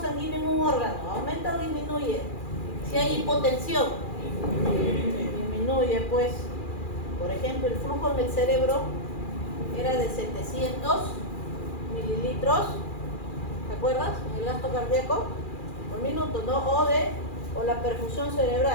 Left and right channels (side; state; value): right; late; 2.4 ms